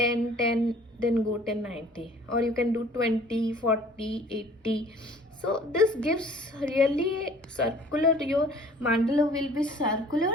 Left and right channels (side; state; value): both; normal; correlation 0.51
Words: 10, then go 10 90, or you can do 20 40 80. So this gives really circular, your mandala will be circular,